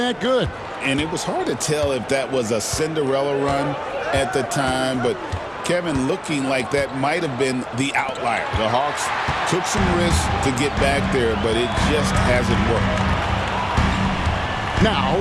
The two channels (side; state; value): both; identical; correlation 1.00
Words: good. And it was hard to tell if that was a Cinderella run at the time, but Kevin, looking like that might have been the outlier. The Hawks took some risks to get back there, but it just hasn't worked. Now,